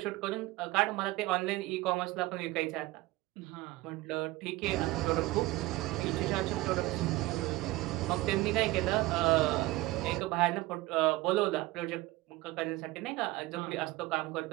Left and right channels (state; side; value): quieter; left; 19.2 dB